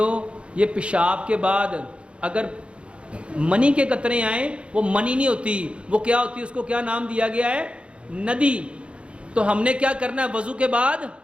یہ پیشاب کے بعد اگر منی کے قطرے آئیں، وہ منی نہیں ہوتی، وہ کیا ہوتی ہے؟ اس کو کیا نام دیا گیا ہے؟ ندی. تو ہم نے کیا کرنا ہے؟ وضو کے بعد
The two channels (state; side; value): late; left; 0.059 ms